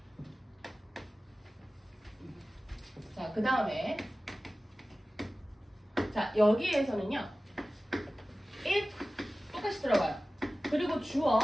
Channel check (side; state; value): both; normal; correlation 0.96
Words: 자, 그 다음에 자 여기에서는요. if 똑같이 들어가요. 그리고